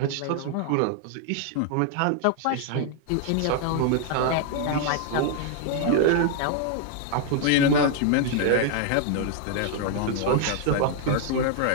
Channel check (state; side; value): different; both; correlation 0.00